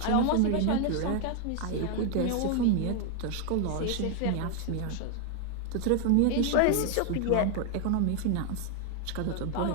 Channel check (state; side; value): different; both; correlation 0.00